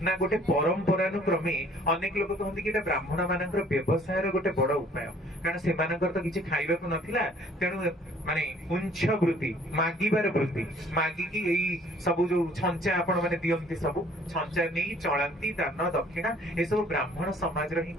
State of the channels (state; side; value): normal; both; correlation 0.57